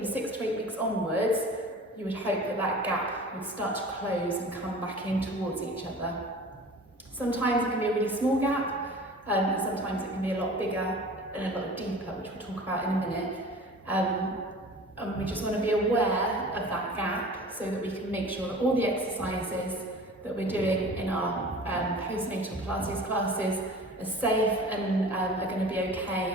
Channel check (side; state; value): both; normal; correlation 0.41